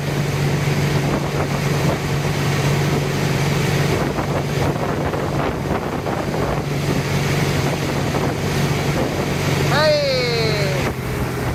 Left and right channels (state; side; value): identical; both; correlation 1.00